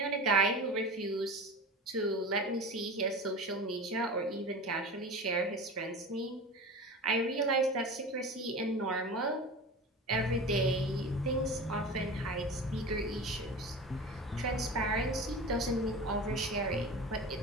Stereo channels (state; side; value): normal; both; correlation 0.32